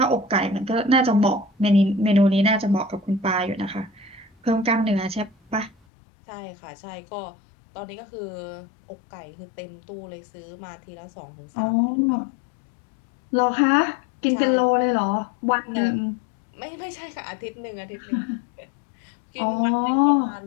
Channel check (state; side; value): drops out; right; at 5.8 s